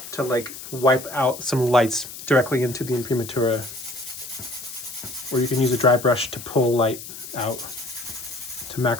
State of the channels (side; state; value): left; noise; hiss, 12 dB below the sound